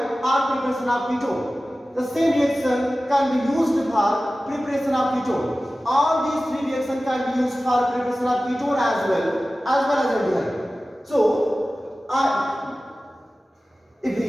or preparation of ketone. The same reaction can be used for preparation of ketone. All these three reactions can be used for preparation of ketone as well as aldehyde. So,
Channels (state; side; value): normal; both; correlation 0.96